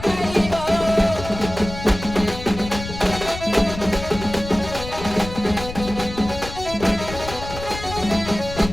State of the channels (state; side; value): noise; left; rumble, 10 dB below the sound